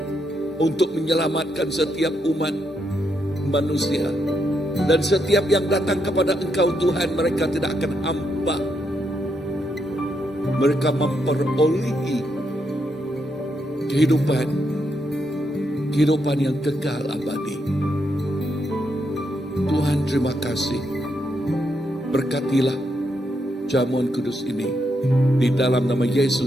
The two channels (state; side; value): normal; both; correlation 0.80